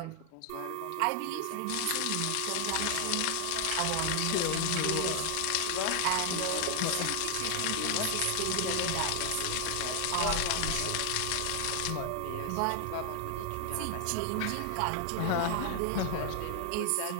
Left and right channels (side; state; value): both; different; correlation 0.00